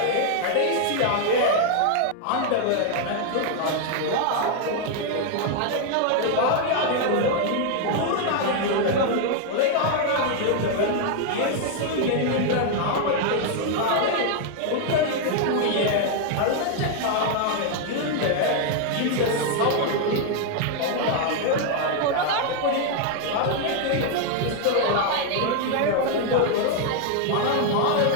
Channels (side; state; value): both; different; correlation 0.00